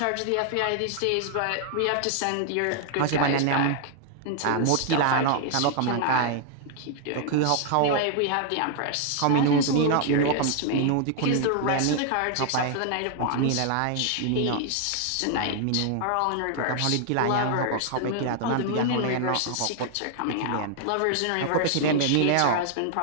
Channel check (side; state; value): both; different; correlation 0.00